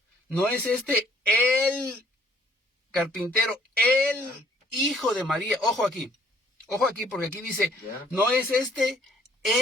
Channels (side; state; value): both; normal; correlation 0.63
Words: ¿No es este el carpintero, el hijo de María? Ojo aquí, porque aquí dice, ¿no es este